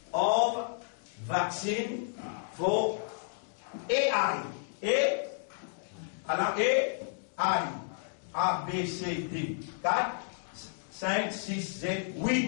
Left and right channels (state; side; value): silent; right; digital silence